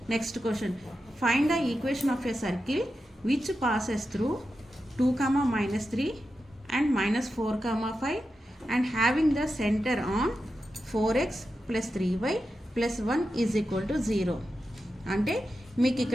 Next question, find the equation of a circle which passes through 2,-3 and -4,5 and having the centre on 4x + 3y + 1 = 0. అంటే మీకు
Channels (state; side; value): normal; both; correlation 0.90